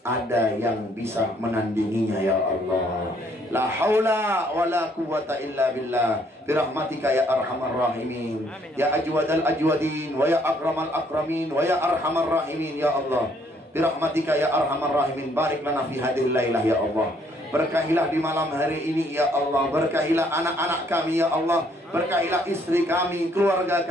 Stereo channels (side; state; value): both; normal; correlation 0.66